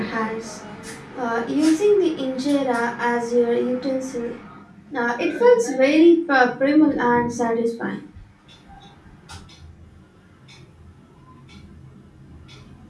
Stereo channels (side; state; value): both; identical; correlation 1.00